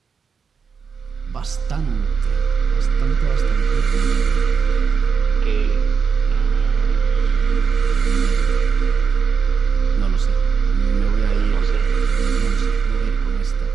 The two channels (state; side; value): quieter; left; 5.9 dB